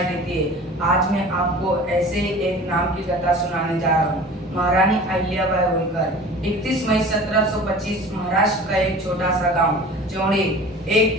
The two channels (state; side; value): normal; both; correlation 0.41